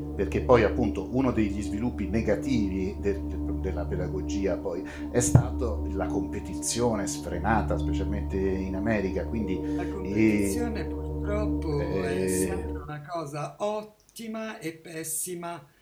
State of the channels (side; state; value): both; identical; correlation 1.00